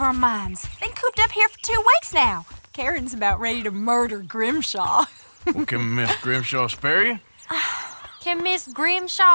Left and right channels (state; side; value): inverted; both; correlation -1.00